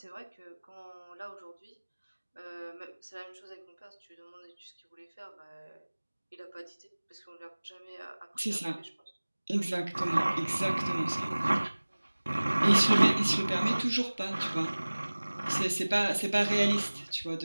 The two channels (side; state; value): both; inverted; correlation -1.00